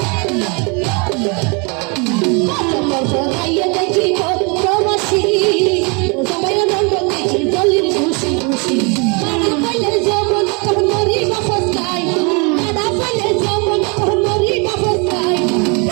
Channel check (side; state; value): left; quieter; 32.3 dB